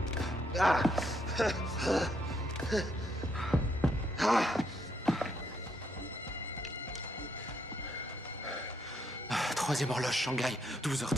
Troisième horloge Shanghai,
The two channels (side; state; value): both; normal; correlation 0.75